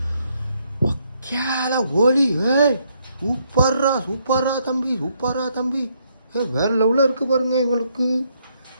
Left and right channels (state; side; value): inverted; both; correlation -0.74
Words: கேல ஓலி. சூப்பர்ரா சூப்பர்ரா தம்பி, சூப்பர்ரா தம்பி. வேறு லெவலில் இருக்குது பாருங்க இவங்களுக்கு.